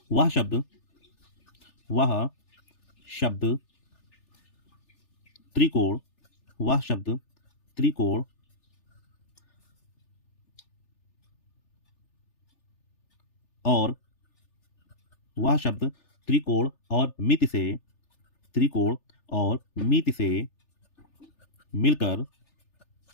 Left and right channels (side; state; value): right; late; 3.4 ms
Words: वह शब्द त्रिकोण और वह शब्द त्रिकोण और मिति से मिलकर